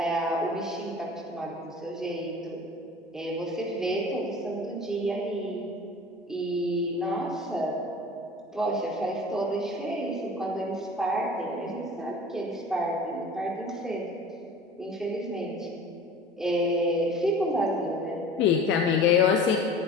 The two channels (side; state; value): both; normal; correlation 0.42